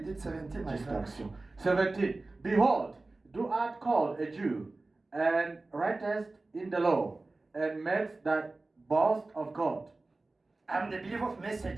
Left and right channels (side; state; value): left; quieter; 3.2 dB